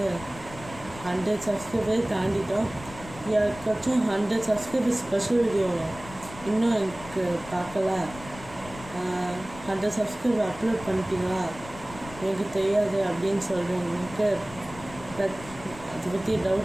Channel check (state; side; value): noise; left; rumble, 16 dB below the sound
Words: 100 சப்ஸ்கிரைபர் தாண்டிட்டோம். யாருக்காச்சும் 100 சப்ஸ்கிரைபர் ஸ்பெஷல் வீடியோ இன்னும் எனக்கு பார்க்கல, 100 சப்ஸ்கிரைபர் அப்லோட் பண்ணிட்டீங்களா, எனக்கு தெரியாது அப்படின்னு சொல்கிறவங்களுக்கு அதை பற்றி